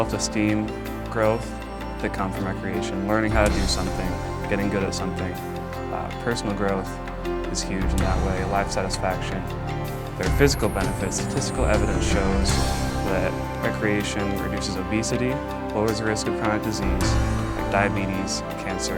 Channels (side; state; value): both; identical; correlation 1.00